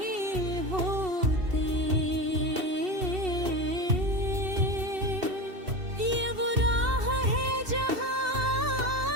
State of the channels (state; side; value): late; left; 2.7 ms